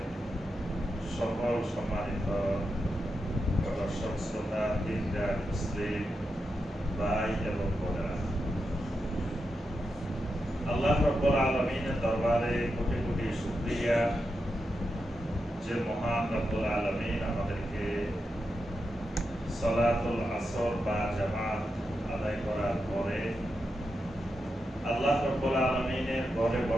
সকল সম্মানিত দর্শক শ্রোতা, দিনদার মুসলিম ভাই এবং বোনেরা, আল্লাহ রাব্বুল আলামিনের দরবারে কোটি কোটি শুকরিয়া যে মহান রাব্বুল আলামিন আমাদেরকে সালাতুল আসর বা জামাত আদায় করার পরে আল্লাহ রাব্বুল আলামিনের ঘরে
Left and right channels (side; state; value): both; normal; correlation 0.87